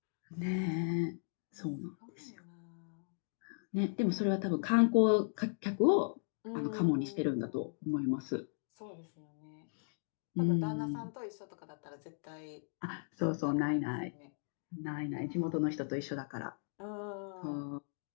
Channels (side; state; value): right; silent; digital silence